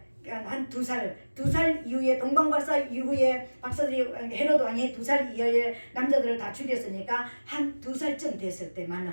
한 2살 이후에, 동방 박사 이후에 박사들이 헤로드 왕이 2살 이하의 남자들을 다 죽였으니까 한 2살쯤 됐을 때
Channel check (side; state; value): both; inverted; correlation -1.00